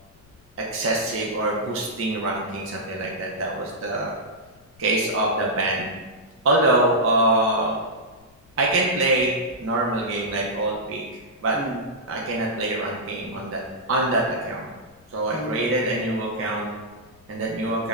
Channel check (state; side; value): noise; left; rumble, 29 dB below the sound